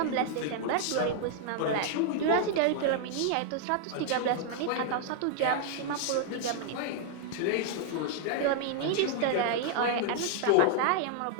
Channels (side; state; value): both; different; correlation 0.00